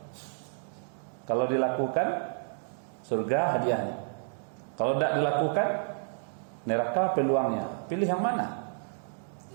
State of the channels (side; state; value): left; silent; digital silence